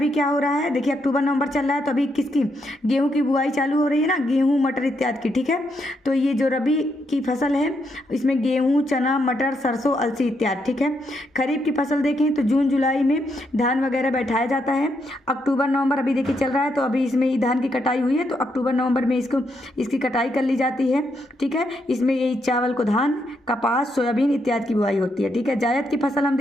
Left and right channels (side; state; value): both; normal; correlation 0.78